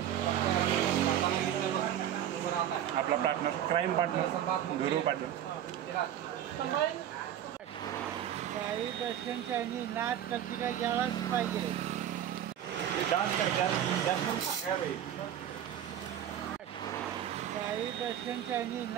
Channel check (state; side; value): quieter; left; 10.6 dB